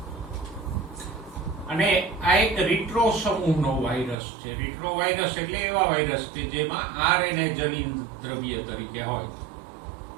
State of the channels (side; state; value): left; drops out; at 4.2 s